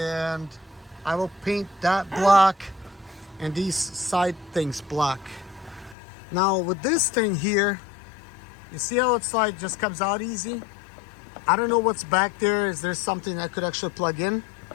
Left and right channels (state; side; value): drops out; right; at 6.0 s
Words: I will paint that black and these side things black. Now with this thing here, you see how it's like just comes out easy? I don't know what's back there. Is there something I could actually plug in?